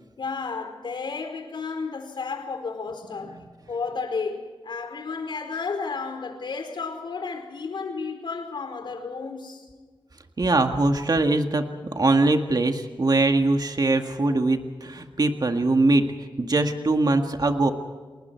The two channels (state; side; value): normal; both; correlation 0.76